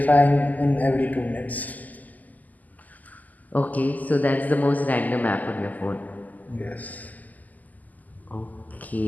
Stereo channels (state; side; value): late; right; 0.080 ms